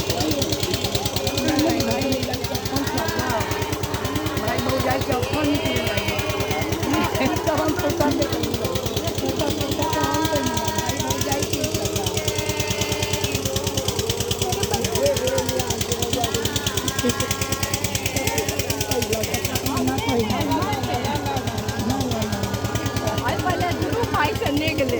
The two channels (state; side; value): identical; both; correlation 1.00